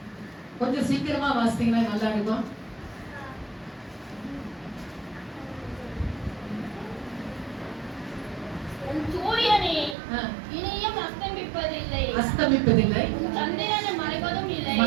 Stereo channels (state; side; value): drops out; left; at 10.0 s